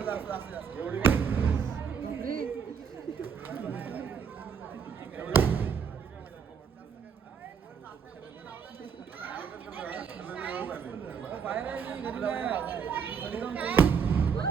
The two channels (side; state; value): left; quieter; 6.7 dB